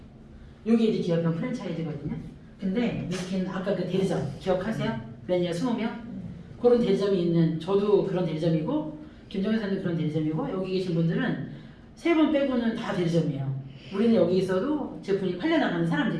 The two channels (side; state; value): both; identical; correlation 1.00